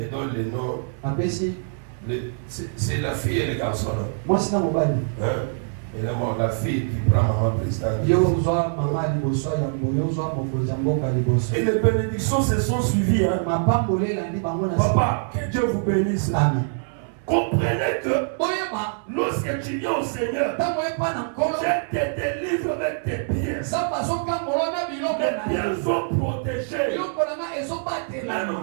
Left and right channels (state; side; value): silent; left; digital silence